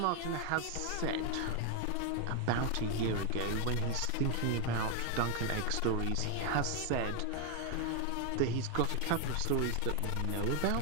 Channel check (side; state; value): both; different; correlation 0.01